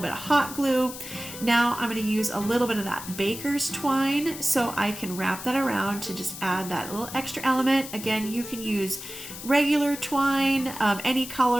bit of hot glue. Now I'm going to use a little bit of that baker's twine so I can wrap that around to just add that little extra element. Again, you can use regular twine, any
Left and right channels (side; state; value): left; noise; hiss, 11 dB below the sound